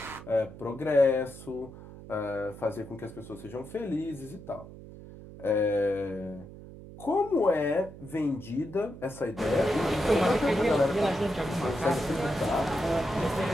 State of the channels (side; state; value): right; noise; hum, 16 dB below the sound